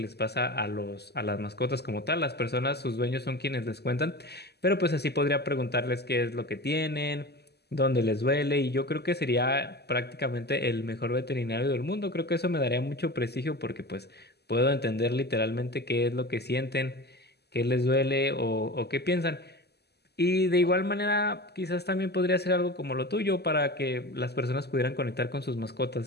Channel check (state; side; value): late; right; 0.48 ms